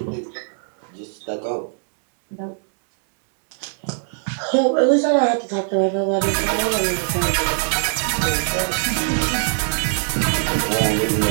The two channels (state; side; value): silent; left; digital silence